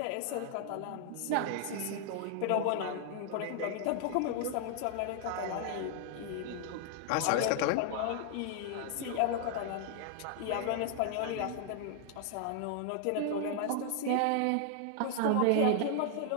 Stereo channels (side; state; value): both; different; correlation 0.00